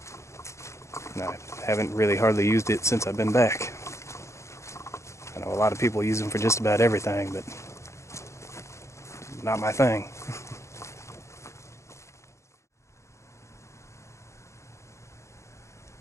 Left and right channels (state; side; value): late; right; 0.14 ms